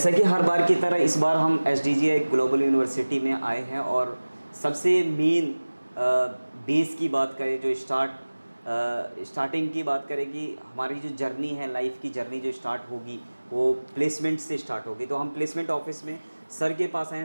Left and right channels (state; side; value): inverted; both; correlation -1.00